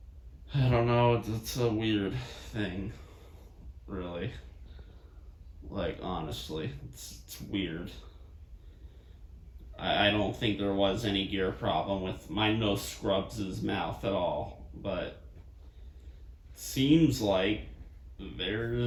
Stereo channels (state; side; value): identical; both; correlation 1.00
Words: I don't know. It's a weird thing, really. Like honestly, it's weird. I don't think there was any gear problem with my No Scrubs' mouth at all, but seems like